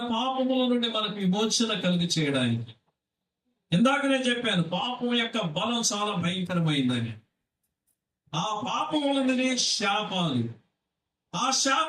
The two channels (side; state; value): both; identical; correlation 1.00